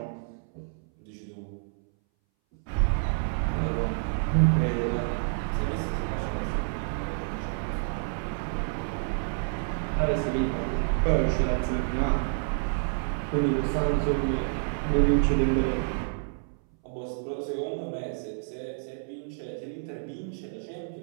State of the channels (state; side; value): silent; left; 59 dB below the other